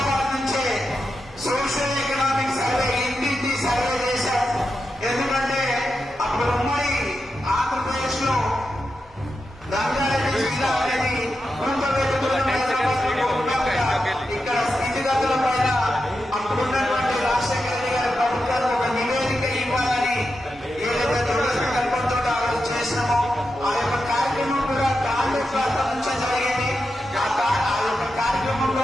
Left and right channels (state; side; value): normal; both; correlation 0.88